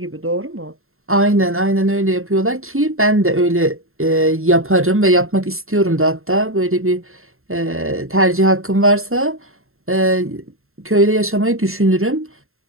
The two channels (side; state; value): left; late; 0.61 ms